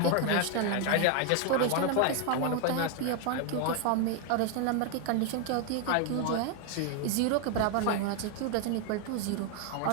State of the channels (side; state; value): both; different; correlation 0.01